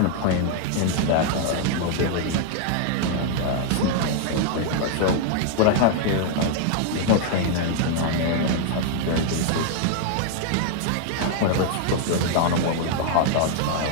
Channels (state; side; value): different; both; correlation 0.00